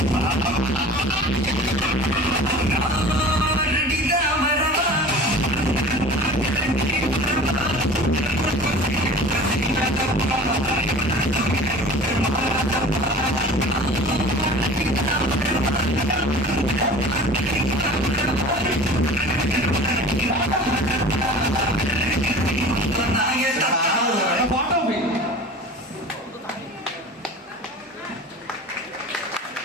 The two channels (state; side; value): normal; both; correlation 0.40